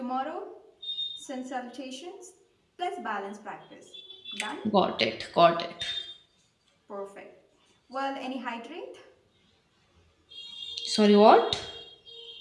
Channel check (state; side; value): identical; both; correlation 1.00